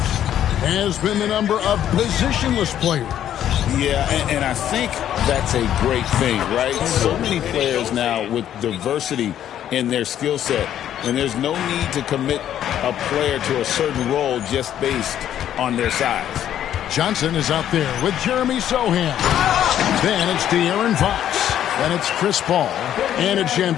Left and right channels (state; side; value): quieter; right; 10.8 dB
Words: has been the number of positionless players. Yeah, and I think that's a great thing, right? So many players now with diversity in their skill set, and there's no need to commit a player to a certain role just based on their size. Johnson is out there with Jeremy Sohan. Then it's De'Aaron Fox. Then it's Chris Paul. And it's